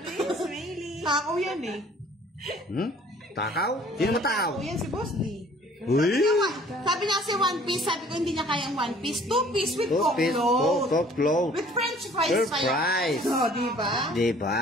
Sorry, Smaily. Takaw yan eh. Takaw? Sino mo takaw? Takaw yan si Boss D. Uy! Sabi niya kasi 1 piece, sabi ko hindi niya kaya ang 1 piece. 2 piece with Coke float. Coke float. With French fries. Fries. Oh, diba?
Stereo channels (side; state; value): both; normal; correlation 0.54